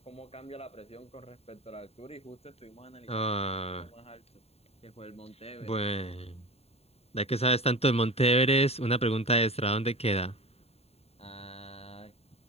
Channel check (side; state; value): right; late; 0.30 ms